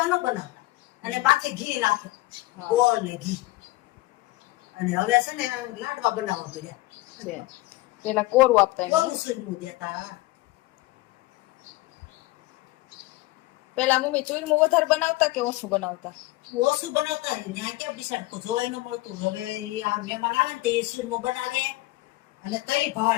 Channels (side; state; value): right; quieter; 19.5 dB